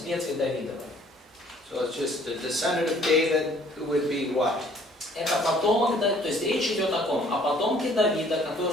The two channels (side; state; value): both; normal; correlation 0.58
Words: ветви Давидовой. So it's just the descendant of David who would be what? Это потомок, то есть речь идет о ком? О потомке Давида,